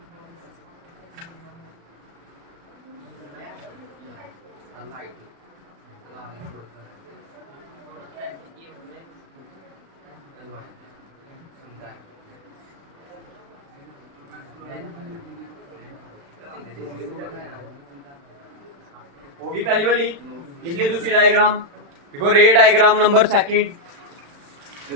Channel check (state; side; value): late; left; 36 ms